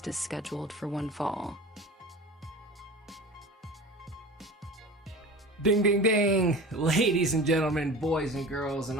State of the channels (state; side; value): normal; both; correlation 0.35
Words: is scheduled for one fall. Ding, ding, ding! Ladies and gentlemen, boys and girls, and